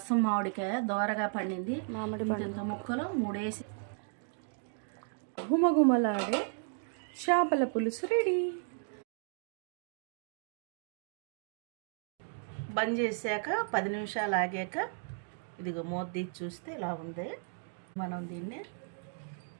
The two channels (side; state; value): left; silent; 55 dB below the other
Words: మామిడికాయ దోరగా పండింది, మామిడి పండు ముక్కలు 3 వేసి గుమగుమలాడే చేపల పులుసు రెడీ. బంద్ చేశాక 10 నిమిషాలు ఆగాక ఇదిగో మూత తీసి చూస్తే ఇలా ఉంది. మనం దీన్ని